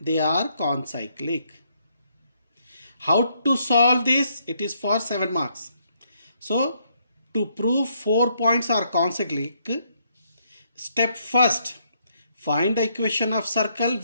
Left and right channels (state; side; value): inverted; both; correlation -0.72